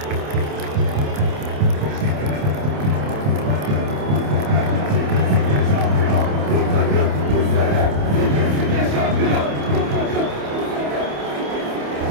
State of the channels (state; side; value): late; left; 27 ms